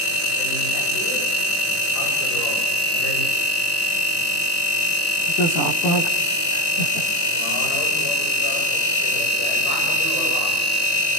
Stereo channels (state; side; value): late; right; 19 ms